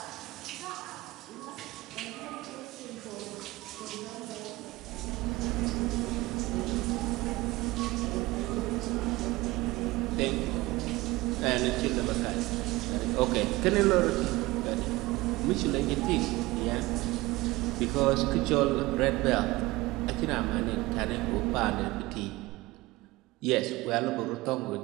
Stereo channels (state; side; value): quieter; left; 20.3 dB